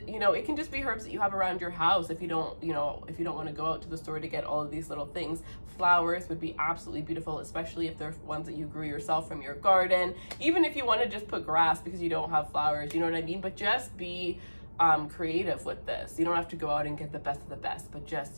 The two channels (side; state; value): both; inverted; correlation -1.00